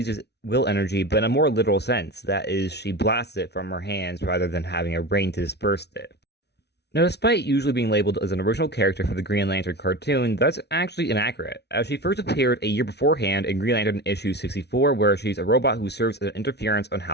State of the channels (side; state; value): right; late; 0.49 ms